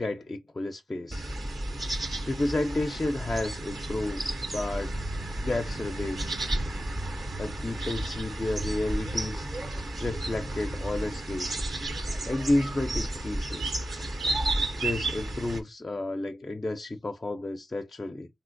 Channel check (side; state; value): both; normal; correlation 0.92